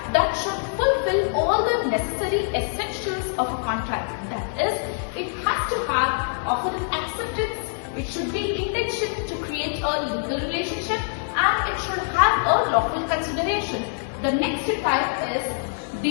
that should fulfill all the necessary essentials of a contract. That is, it has to have offer of acceptance, it should be intention to create a legal relationship, and it should have a lawful consideration. The next type is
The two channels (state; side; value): silent; right; digital silence